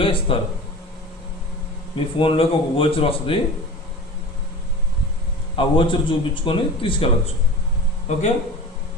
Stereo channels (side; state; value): both; normal; correlation 0.35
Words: ఇస్తారు. మీ ఫోన్లోకి ఒక వోచర్ వస్తుంది, ఆ వోచర్ చూపించుకొని తీసుకెళ్ళచ్చు. ఓకే,